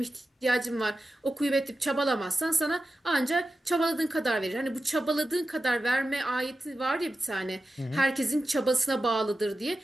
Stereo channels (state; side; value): normal; both; correlation 0.93